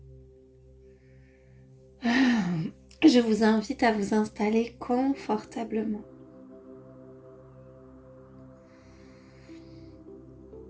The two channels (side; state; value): both; identical; correlation 1.00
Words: Je vous invite à vous installer confortablement.